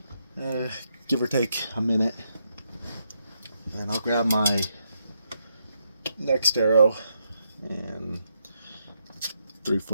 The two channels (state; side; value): inverted; both; correlation -0.79